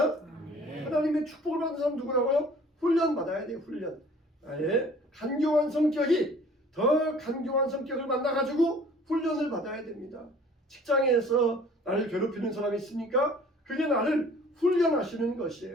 하나님의 축복을 받는 사람 누구라고요? 훈련 받아야 돼요. 훈련. 나의 간교한 성격이 더 간교한 성격을 만나가지고 훈련을 받아야 됩니다. 직장에서 나를 괴롭히는 사람이 있습니까? 그게 나를 훈련하시는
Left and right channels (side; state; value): both; normal; correlation 0.51